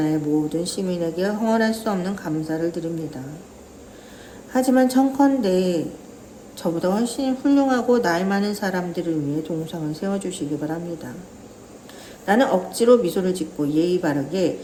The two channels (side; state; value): both; identical; correlation 1.00